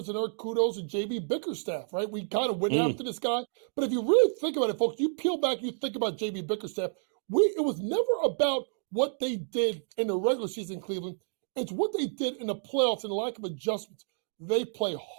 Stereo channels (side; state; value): left; silent; digital silence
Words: and our kudos to J.B. Bickerstaff, right? We kind of went after this guy. But if you really think about it, folks, you peel back, you think about J.B. Bickerstaff, it was never about what they did in the regular season in Cleveland. It's what they did in the playoffs and the lack of adjustments. They play